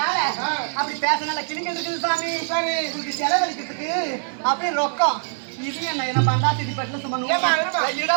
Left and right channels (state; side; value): silent; left; 63 dB below the other